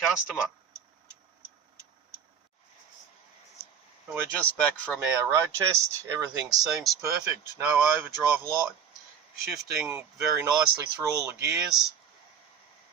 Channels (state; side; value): quieter; left; 7.5 dB